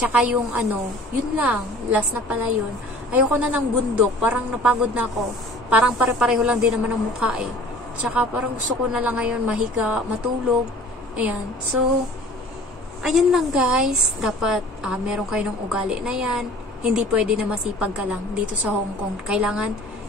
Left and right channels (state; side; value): normal; both; correlation 0.47